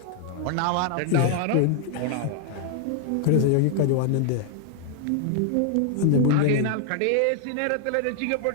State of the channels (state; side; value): different; both; correlation 0.00